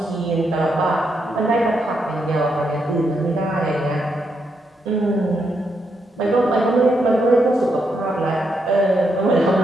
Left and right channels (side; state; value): both; normal; correlation 0.80